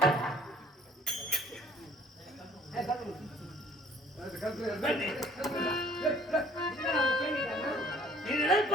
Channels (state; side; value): normal; both; correlation 0.55